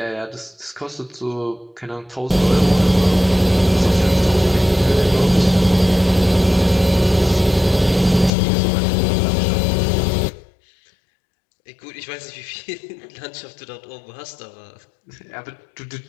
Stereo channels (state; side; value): drops out; right; at 8.3 s